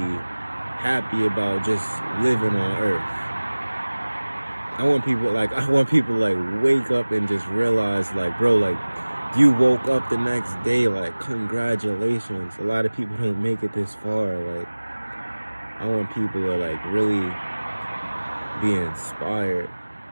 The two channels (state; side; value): inverted; both; correlation -1.00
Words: happy about just living on earth. I want people like wake up and just realize, like, bro, like, you woke up the next day, like, congratulations. A lot of people don't make it this far. Like, I want people to like really be inspired